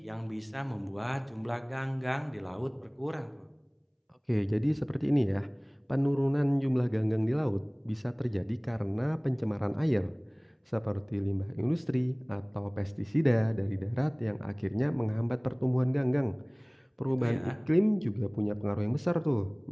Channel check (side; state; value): both; identical; correlation 1.00